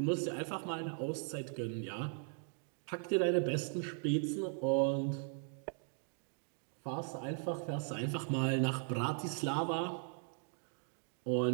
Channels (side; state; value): left; silent; 52 dB below the other